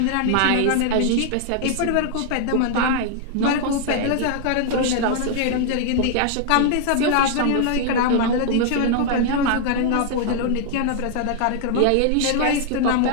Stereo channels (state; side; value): different; both; correlation 0.00